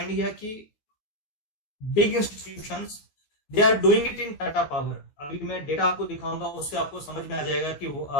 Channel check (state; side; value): late; right; 14 ms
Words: किया कि big institutions they are doing it in Tata power. अभी मैं डेटा आपको दिखाऊंगा, उससे आपको समझ में आ जाएगा कि